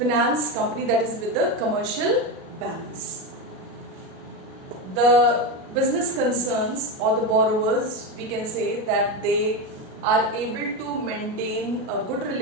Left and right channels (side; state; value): left; late; 37 ms